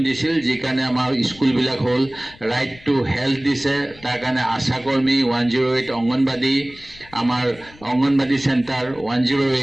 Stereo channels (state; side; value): noise; left; rumble, 23 dB below the sound